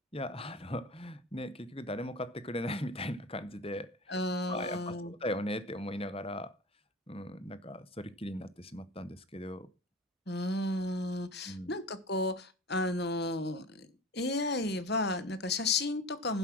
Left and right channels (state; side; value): normal; both; correlation 0.34